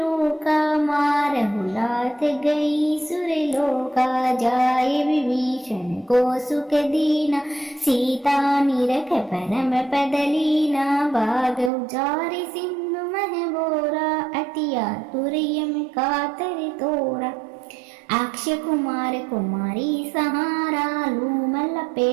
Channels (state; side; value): drops out; left; at 11.7 s